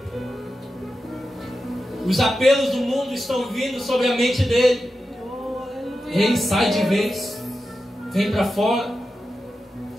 Os apelos do mundo estão vindo sobre a mente dele. Ele sai de vez, vem para fora.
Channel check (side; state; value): both; normal; correlation 0.91